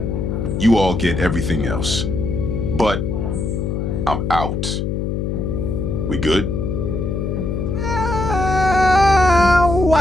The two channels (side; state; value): left; noise; hum, 1 dB below the sound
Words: You all get everything else. But I'm out. We good?